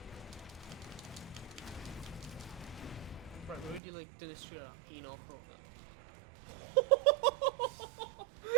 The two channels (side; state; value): left; drops out; at 3.8 s